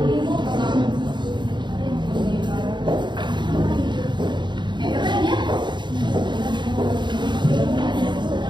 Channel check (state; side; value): late; left; 0.22 ms